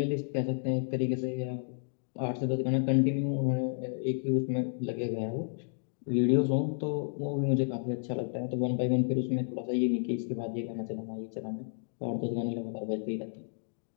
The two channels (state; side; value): silent; right; digital silence